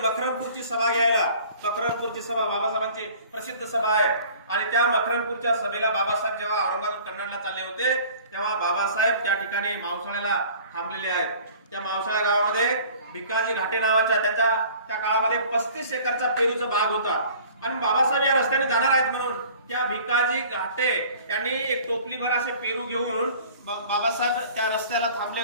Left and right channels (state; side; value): inverted; both; correlation -0.48